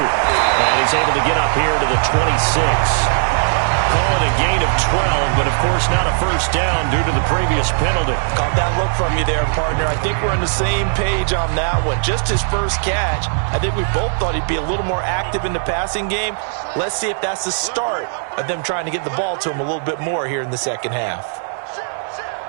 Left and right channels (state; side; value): silent; left; digital silence